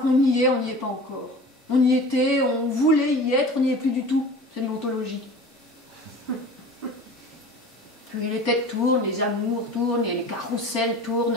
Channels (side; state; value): both; normal; correlation 0.39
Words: y est, on n'y est pas encore. On y était, on voulait y être, on n'y est plus du tout. C'est une ontologie. Puis les têtes tournent, les amours tournent, et les carrousels